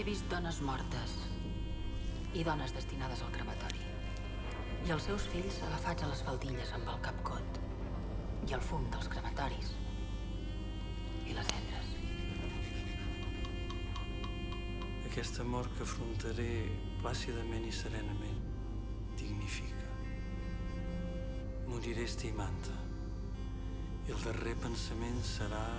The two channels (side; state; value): both; identical; correlation 1.00